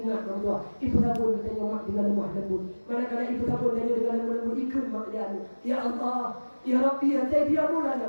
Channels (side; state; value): both; inverted; correlation -1.00